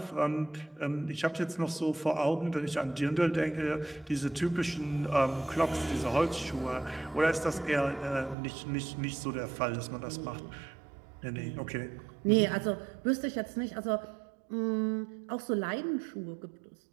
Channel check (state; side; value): drops out; left; at 8.3 s